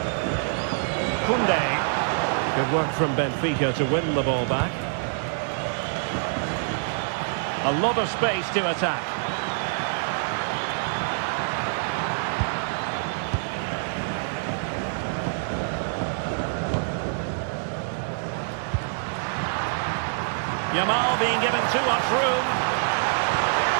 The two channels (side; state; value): left; silent; 56 dB below the other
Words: Koundé. Good work from Benfica to win the ball back. A lot of space to attack. Yamal being given too much room.